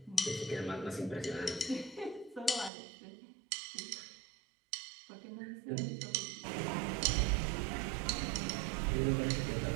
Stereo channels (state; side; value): drops out; left; at 2.7 s